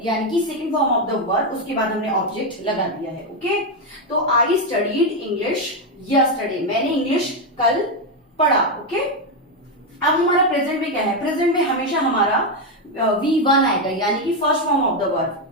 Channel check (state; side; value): normal; both; correlation 0.06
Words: यानी कि second form of the verb, उसके बाद हमने ऑब्जेक्ट लगा दिया है, ओके। तो आई स्टडीड इंग्लिश यस्टरडे, मैंने इंग्लिश कल पढ़ा, ओके। अब हमारा प्रेजेंट में क्या है, प्रेजेंट में हमेशा हमारा V1 आएगा यानी कि first form of the